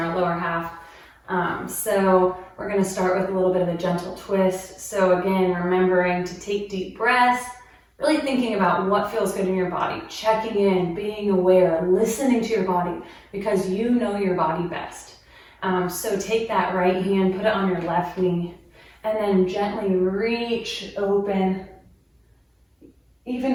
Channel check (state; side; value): identical; both; correlation 1.00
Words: lower half. So we're going to start with a little bit of a gentle twist. So again, remembering to take deep breaths, really thinking about what feels good in your body, checking in, being aware, listening to your body because you know your body best. So take that right hand, put it on your left knee, and then gently reach open. Even